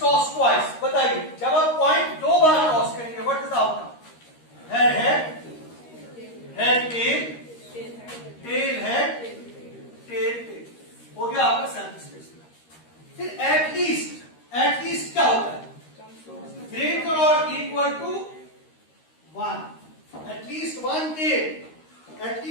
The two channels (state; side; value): late; right; 13 ms